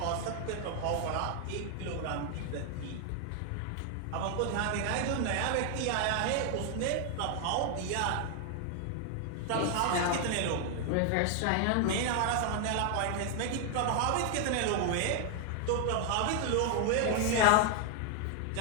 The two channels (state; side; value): different; both; correlation 0.00